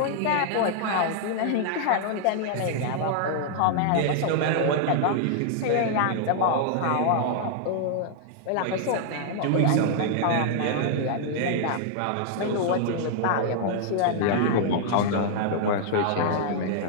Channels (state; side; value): different; both; correlation -0.01